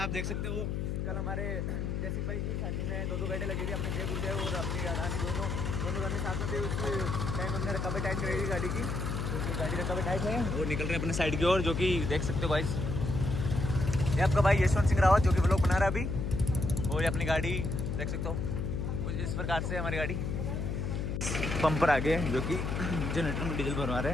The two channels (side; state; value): left; noise; hum, 1 dB below the sound